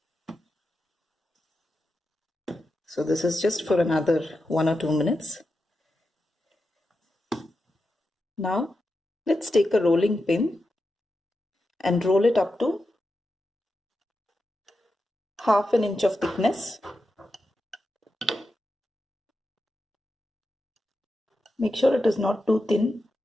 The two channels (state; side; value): normal; both; correlation 0.89